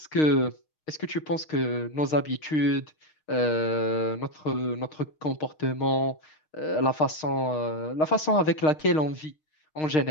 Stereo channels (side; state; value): right; late; 6.5 ms